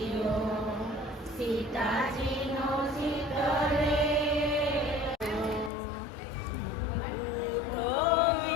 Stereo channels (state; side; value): drops out; right; at 5.7 s